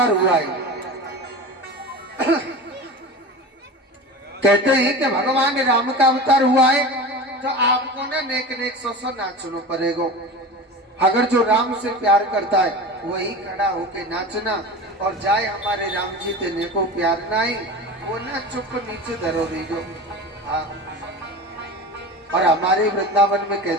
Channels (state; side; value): normal; both; correlation 0.31